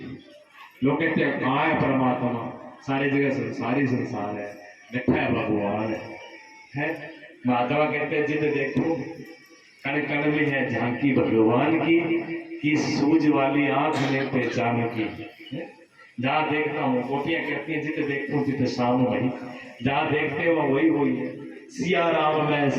लोग कहते हैं कहाँ है परमात्मा? सारी जगह संसारी संसार है, बैठा है भगवान है। माधवा कहते हैं जिद देखो कण कण में है झांकी भगवान की सूझ वाली आंख में पहचान की। जहाँ देखता हूँ गोपियां कहती हैं जिद देखो जिद शाम वही, जहाँ देखते हो वही वही है। सिया राम मैं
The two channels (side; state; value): both; identical; correlation 1.00